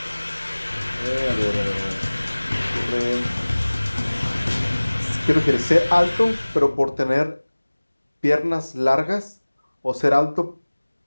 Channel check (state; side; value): inverted; both; correlation -1.00